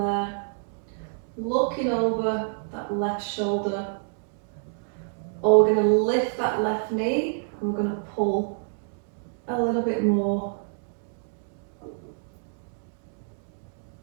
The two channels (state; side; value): silent; left; digital silence